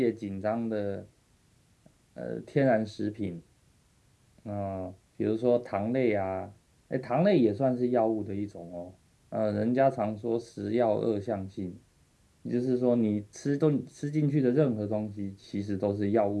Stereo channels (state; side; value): identical; both; correlation 1.00